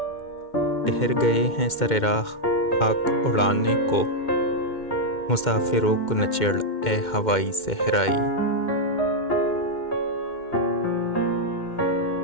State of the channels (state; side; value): late; right; 2.1 ms